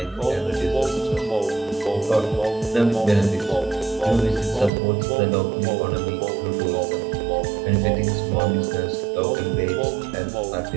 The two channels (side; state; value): left; drops out; at 4.7 s